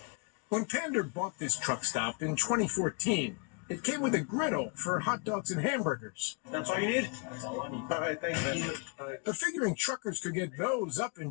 When Pander bought this truck stop in 2014, it came with a griddle for hot dogs and hamburgers. That's all you need? That's all I need. All right, thank you. But figuring truckers could get those up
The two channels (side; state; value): right; quieter; 34.4 dB